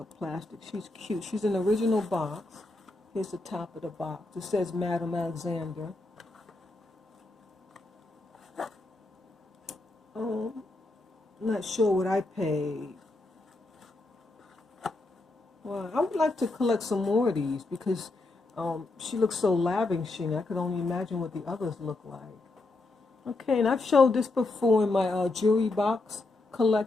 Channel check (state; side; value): quieter; right; 3.0 dB